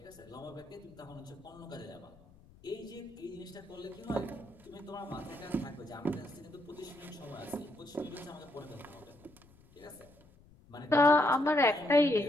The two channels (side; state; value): left; noise; rumble, 25 dB below the sound